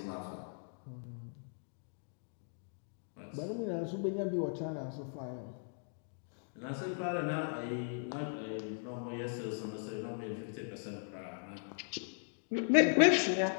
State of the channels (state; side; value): silent; right; digital silence